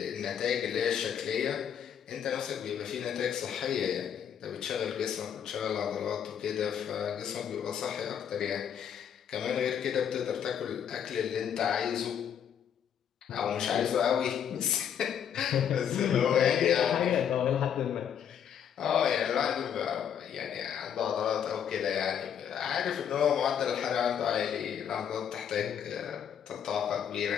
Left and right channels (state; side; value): quieter; right; 8.6 dB